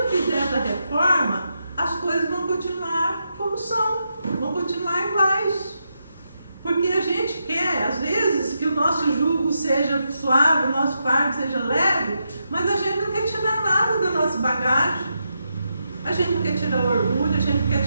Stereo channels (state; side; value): inverted; both; correlation -0.84